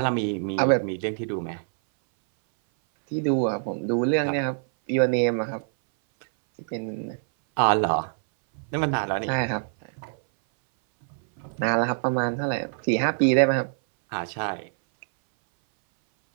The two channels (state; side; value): silent; left; 59 dB below the other